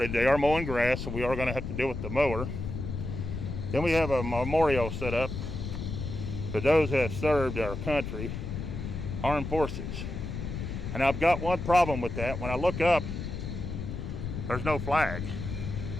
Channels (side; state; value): left; noise; rumble, 5 dB below the sound